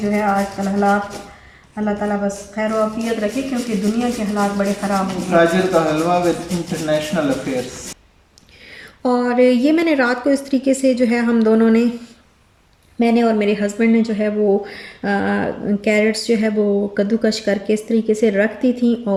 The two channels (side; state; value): both; identical; correlation 1.00